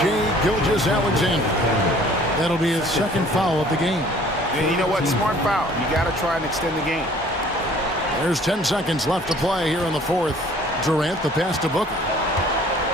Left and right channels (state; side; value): normal; both; correlation 0.54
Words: Gilgeous-Alexander. That'll be his second foul of the game. And you know what? Smart foul. You got to try and extend the game. There's 10 seconds left to play here in the 4th. Durant, the pass to Booker.